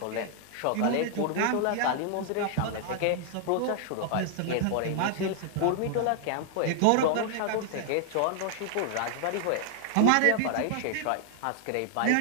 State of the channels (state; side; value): different; both; correlation 0.00